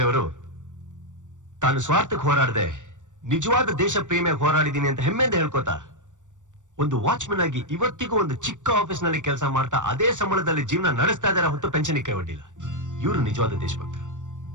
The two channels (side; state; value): left; late; 0.86 ms